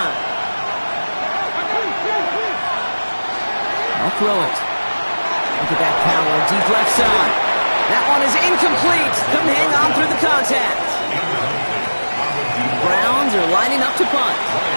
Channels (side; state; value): both; inverted; correlation -1.00